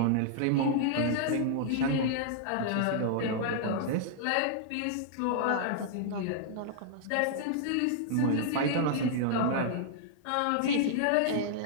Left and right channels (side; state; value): both; different; correlation -0.01